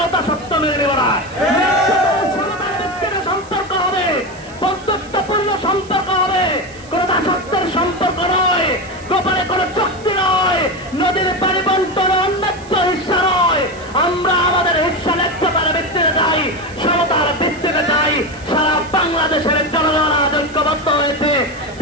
দাসত্ব মেনে নেব না। সম্পর্ক হবে, বন্ধুত্বপূর্ণ সম্পর্ক হবে, কোন দাসত্বের সম্পর্ক নয়, গোপনে কোন চুক্তি নয়, নদীর পানি বন্টন অন্যায্য হিস্সা নয়। আমরা আমাদের হিস্সা ন্যায্যতার ভিত্তিতে যাই, সমতার ভিত্তিতে যাই। সারা বাংলাদেশের জনগণ আজ ঐক্যবদ্ধ হয়েছে।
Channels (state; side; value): noise; right; hiss, 23 dB below the sound